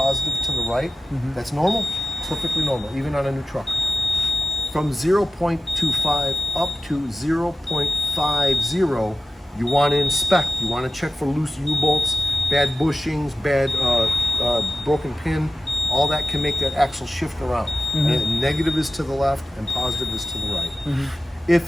to the right. That's normal, perfectly normal, even on a new truck. From 0.25 up to 0.50, you want to inspect. You want to check for loose U-bolts, bad bushings, bad broken pin. All that can make that axle shift around. And negative is to the left and positive is to the right.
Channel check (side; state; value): both; normal; correlation 0.96